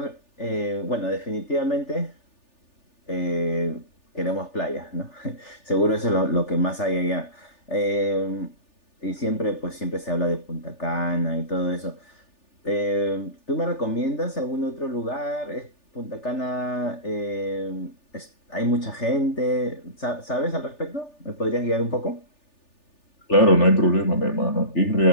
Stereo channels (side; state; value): right; late; 3.4 ms